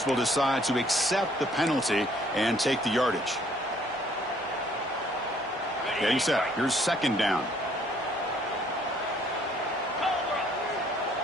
will decide to accept the penalty and take the yardage. Getting set. Here's second down.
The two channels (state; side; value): normal; both; correlation 0.62